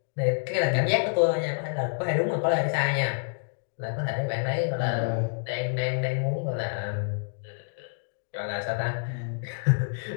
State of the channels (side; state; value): right; silent; digital silence